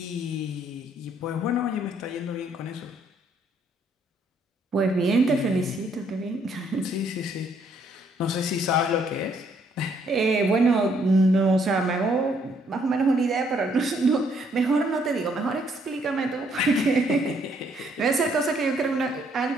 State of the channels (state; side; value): normal; both; correlation 0.68